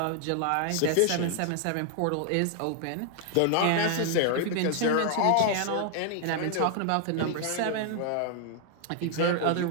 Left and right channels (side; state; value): both; different; correlation 0.00